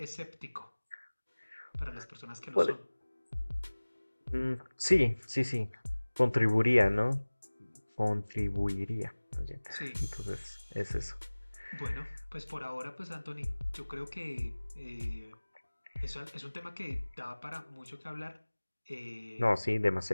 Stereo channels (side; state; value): both; inverted; correlation -1.00